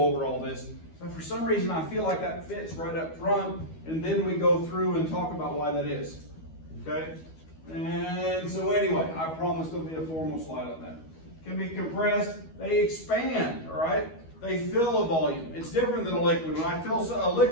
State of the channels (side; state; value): right; late; 12 ms